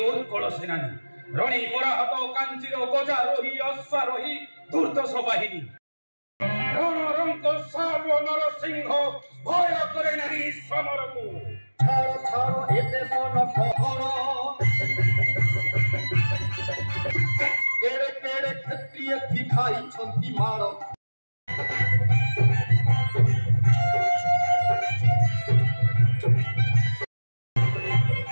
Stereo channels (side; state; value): both; inverted; correlation -1.00